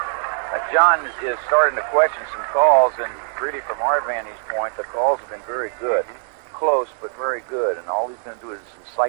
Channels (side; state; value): left; silent; 58 dB below the other